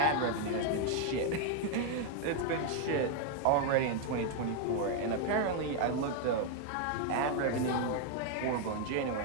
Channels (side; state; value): both; different; correlation 0.00